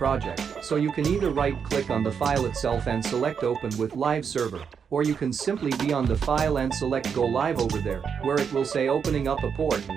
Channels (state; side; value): quieter; left; 6.8 dB